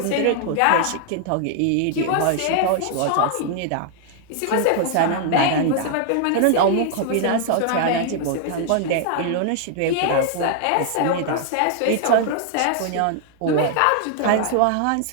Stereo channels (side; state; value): both; different; correlation 0.00